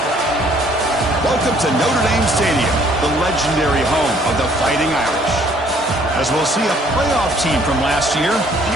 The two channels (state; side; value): normal; both; correlation 0.61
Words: Welcome to Notre Dame Stadium, the legendary home of the Fighting Irish. As we'll see a playoff team from last year, the